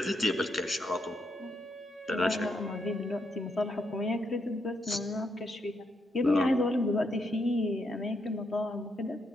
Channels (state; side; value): normal; both; correlation 0.79